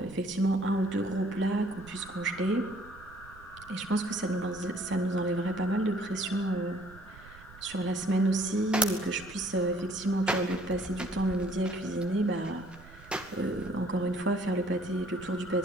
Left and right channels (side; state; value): right; noise; rumble, 21 dB below the sound